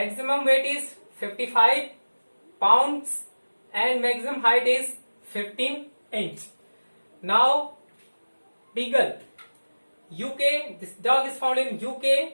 weight is 55 pounds and maximum height is 15 inch. Now Beagle, UK. This dog is found in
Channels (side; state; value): both; inverted; correlation -1.00